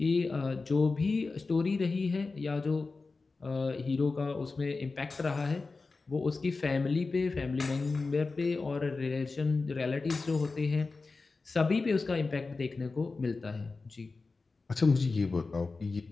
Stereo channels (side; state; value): right; quieter; 3.9 dB